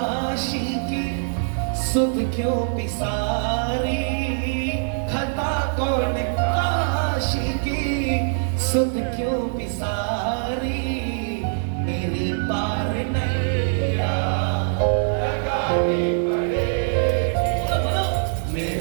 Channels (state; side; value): silent; left; digital silence